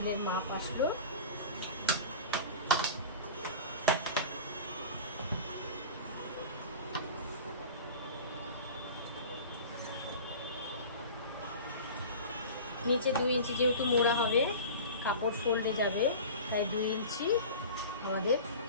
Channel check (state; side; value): inverted; both; correlation -0.35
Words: মাপ আসলো। নিচে 2 ইঞ্চি যেহেতু মোড়া হবে, কাপড় ফোল্ডে যাবে, তাই 2 ইঞ্চি আমাদের